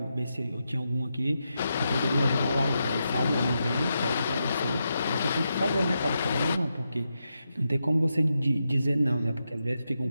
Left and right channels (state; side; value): inverted; both; correlation -0.86